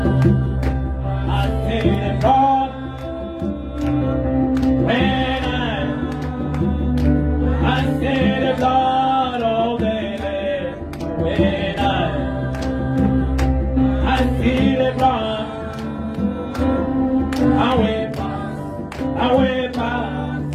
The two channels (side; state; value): both; identical; correlation 1.00